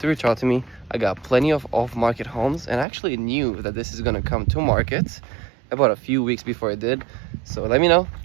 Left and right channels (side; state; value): left; drops out; at 2.9 s